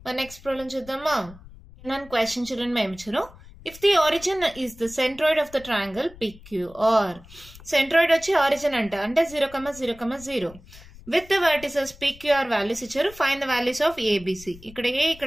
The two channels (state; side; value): noise; left; rumble, 21 dB below the sound